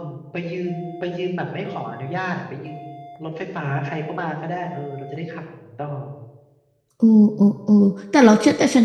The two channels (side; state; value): both; identical; correlation 1.00